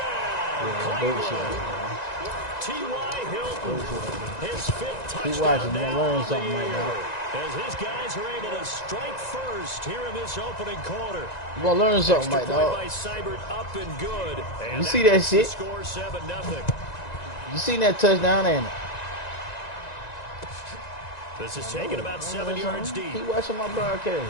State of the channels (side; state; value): right; late; 1.9 ms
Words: Cleveland. T.Y. Hilton, his 5th touchdown now learn of the something right year. now. As his guys are able to strike first here in this opening quarter. You gonna learn something, Extra right, point dog? by Seibert, up and good. And You see that makes the shit? Score 7-0. You seen that touchdown, ain't it? This is taken about 7 yards deep. Keep watching my